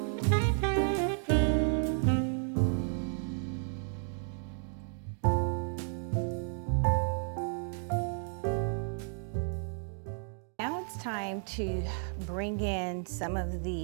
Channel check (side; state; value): left; silent; 56 dB below the other